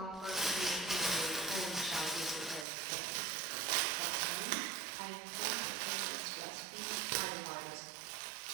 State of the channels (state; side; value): drops out; left; at 2.7 s